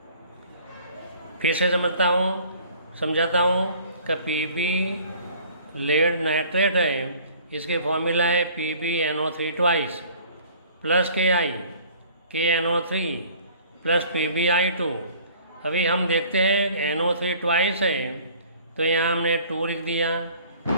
फिर से समझाता हूँ कि Pb लेड नाइट्रेट है, इसके फॉर्मूला है PbNO3 twice plus KNO3 plus PbI2. अभी हम देखते हैं NO3 ट्वाइस है तो यहाँ हमने 2 लिख दिया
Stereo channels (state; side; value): inverted; both; correlation -0.52